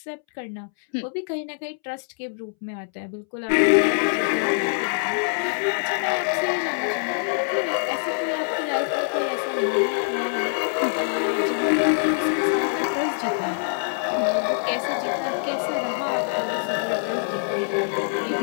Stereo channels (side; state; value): right; silent; 62 dB below the other